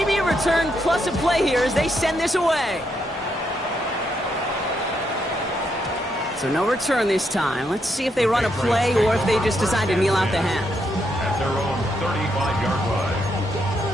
a return plus a play here as they send this away. So no return this time. Let's see if they run a play or if they just decide to kneel out the half. At their own 35-yard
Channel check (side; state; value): both; normal; correlation 0.78